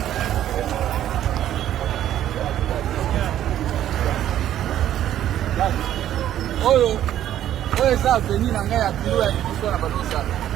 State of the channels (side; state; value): left; quieter; 11.7 dB